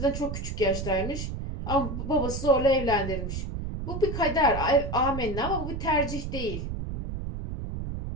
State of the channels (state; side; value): noise; right; rumble, 5 dB below the sound